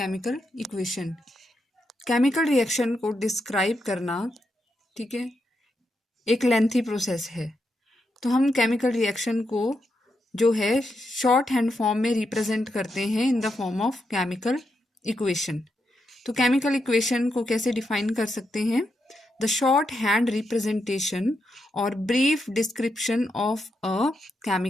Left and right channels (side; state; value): both; normal; correlation 0.83